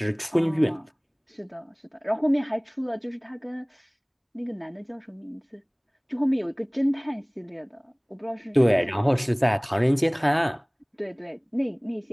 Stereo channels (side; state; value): both; identical; correlation 1.00